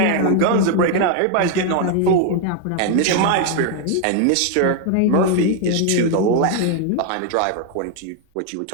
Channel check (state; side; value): different; both; correlation 0.00